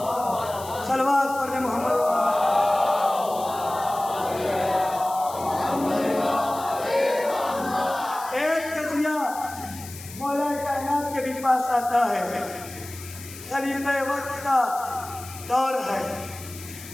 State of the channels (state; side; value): noise; left; hiss, 15 dB below the sound